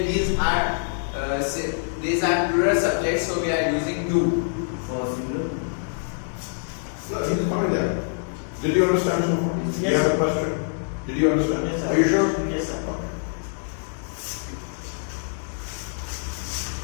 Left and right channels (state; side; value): silent; right; 62 dB below the other